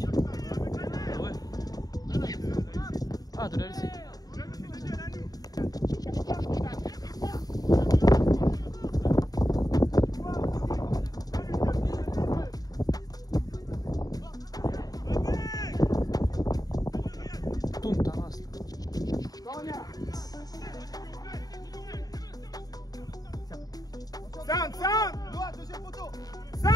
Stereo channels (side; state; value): right; late; 0.18 ms